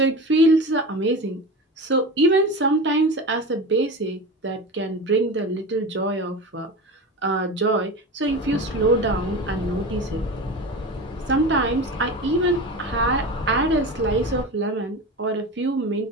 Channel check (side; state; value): both; normal; correlation 0.28